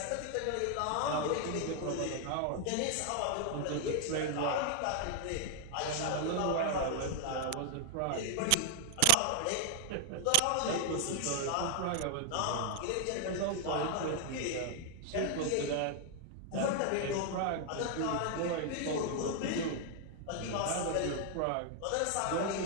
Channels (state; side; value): different; both; correlation 0.00